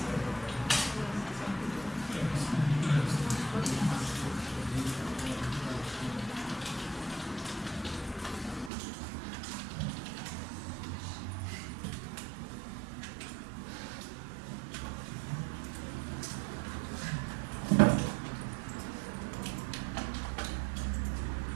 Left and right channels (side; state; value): left; drops out; at 8.7 s